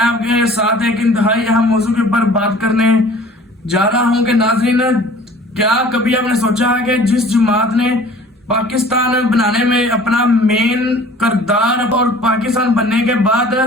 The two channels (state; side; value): normal; both; correlation 0.49